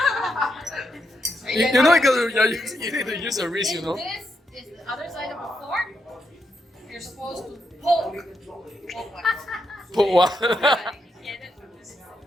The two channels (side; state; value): both; normal; correlation 0.82